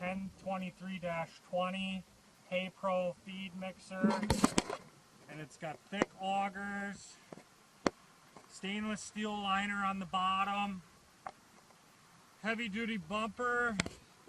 Hay Pro feed mixer. And it's got thick augers, stainless steel liner on the bottom. Heavy duty bumper,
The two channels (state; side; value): identical; both; correlation 1.00